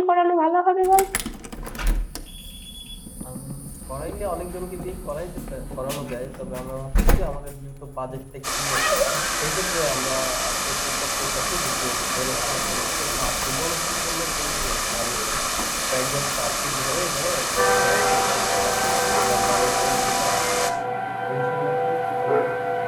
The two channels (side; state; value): both; identical; correlation 1.00